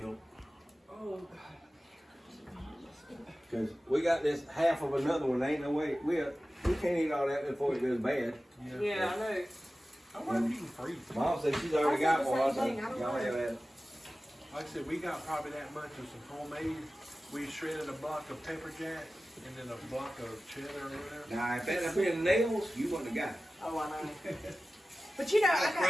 Oh, Cause we got this half of another one, ain't no way, we can't eat all that before it goes bad. Yeah, I know. I wonder if you can freeze it. Mom said she's already got one, I I said the same said, thing, I don't y'all know. have that. Like I said, we got probably that much of some homemade. We shredded a block of pepper jack and then a block of cheddar or whatever. Now, if that had been nails, you wouldn't have got it. Oh, I know. But you know, I got,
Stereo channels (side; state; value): both; normal; correlation 0.95